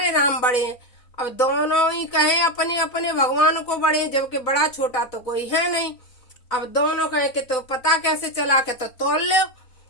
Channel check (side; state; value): right; late; 4.0 ms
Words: राम बड़े हैं। अब दोनों ही कहे अपने अपने भगवान को बड़े हैं, जबकि बड़ा छोटा तो कोई है नहीं। अब दोनों कहे कि तो पता कैसे चला के तो तोल लो